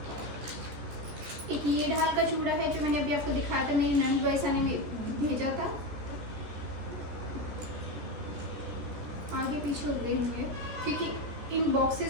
एक ये ढाल का चूड़ा है जो मैंने अभी आपको दिखाया था, मेरी ननद वाइसा ने भेजा था। आगे पीछे हो गए होंगे क्योंकि इन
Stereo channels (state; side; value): late; left; 14 ms